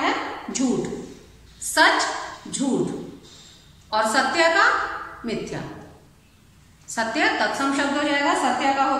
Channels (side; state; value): both; identical; correlation 1.00